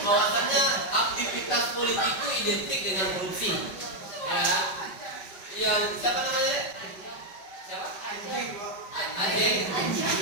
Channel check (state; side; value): late; right; 5.1 ms